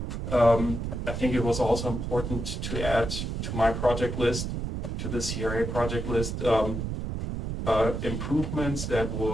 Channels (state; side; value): noise; right; rumble, 4 dB below the sound